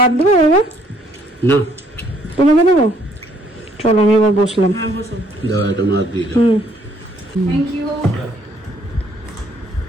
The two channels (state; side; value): normal; both; correlation 0.65